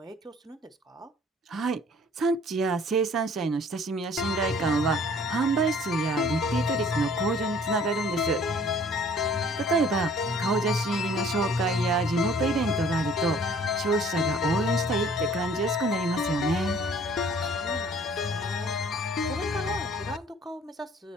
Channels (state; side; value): normal; both; correlation 0.55